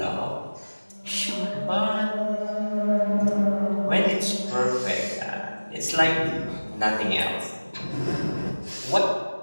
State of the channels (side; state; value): both; inverted; correlation -1.00